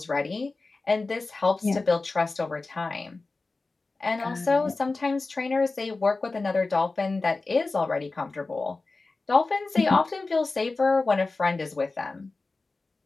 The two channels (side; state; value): right; quieter; 3.6 dB